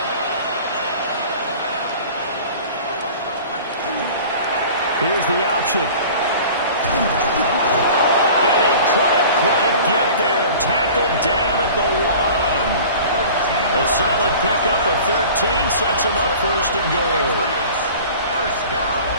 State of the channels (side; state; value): both; inverted; correlation -0.42